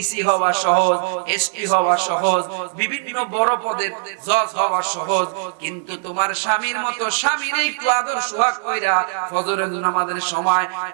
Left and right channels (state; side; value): silent; left; digital silence